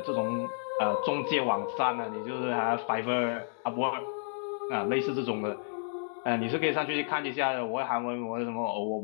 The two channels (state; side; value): silent; right; digital silence